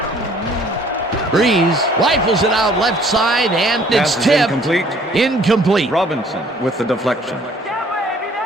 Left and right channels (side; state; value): both; normal; correlation 0.58